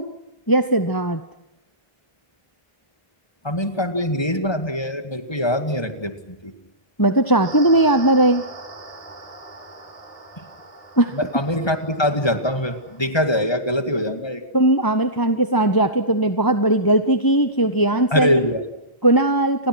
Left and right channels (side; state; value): right; late; 1.3 ms